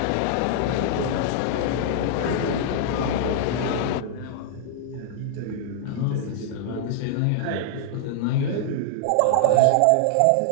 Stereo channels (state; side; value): different; both; correlation -0.01